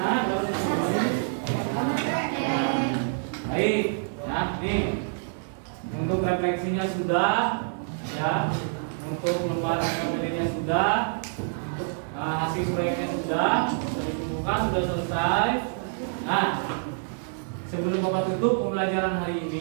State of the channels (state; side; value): silent; left; 60 dB below the other